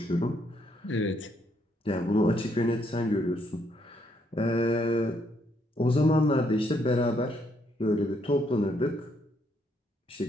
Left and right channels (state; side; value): normal; both; correlation 0.73